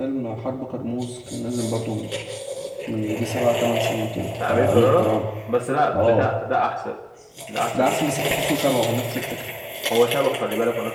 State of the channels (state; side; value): identical; both; correlation 1.00